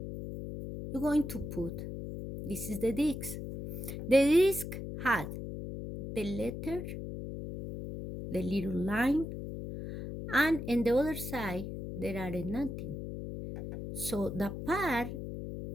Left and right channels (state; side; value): noise; left; hum, 7 dB below the sound